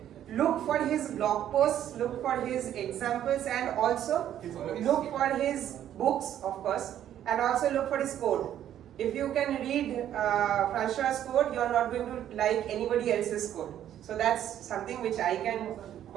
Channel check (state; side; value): quieter; left; 11.0 dB